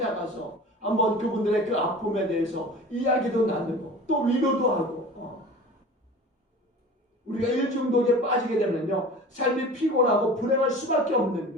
한번 그분들의 그 아픔에 대해서 이야기도 나누고 또 위로도 하고. 우리가 일중독에 빠지게 되면요, 삶이 피곤하고 불행할 수밖에 없는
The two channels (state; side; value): normal; both; correlation 0.39